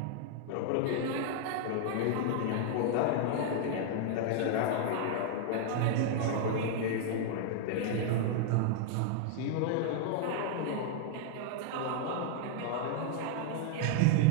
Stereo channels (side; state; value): both; different; correlation -0.01